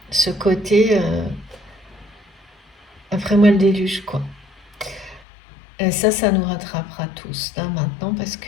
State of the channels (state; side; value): drops out; right; at 5.2 s